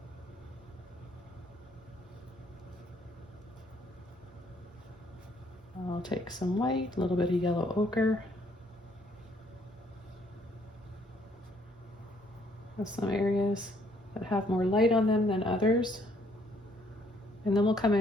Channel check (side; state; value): both; normal; correlation 0.66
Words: I'll take some white, a little bit of yellow ochre. There's some areas that have more light on them than others. And then we'll come